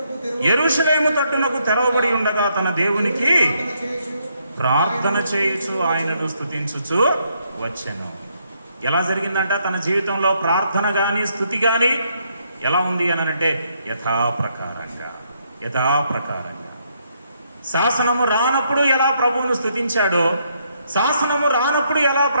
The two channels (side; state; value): both; inverted; correlation -0.74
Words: యెరూషలేము తట్టునకు తెరవబడి ఉండగా తన దేవునికి ప్రార్థన చేయుచు ఆయనను స్తుతించుచు వచ్చెను. ఎలా జరిగిందంట? తన జీవితంలో ప్రార్థన గాని స్తుతి గాని ఎలా ఉంది అని అంటే యథాప్రకారంగా. శాసనము రానప్పుడు ఎలా ప్రభువును స్తుతించాడో, శాసనము రానప్పుడు ఎలా